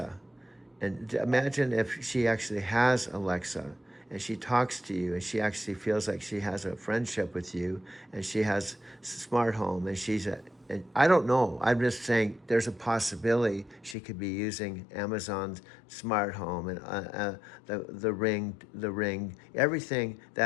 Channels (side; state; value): right; drops out; at 14.0 s